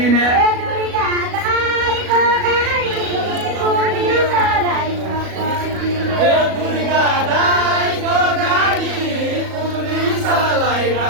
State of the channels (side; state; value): left; late; 37 ms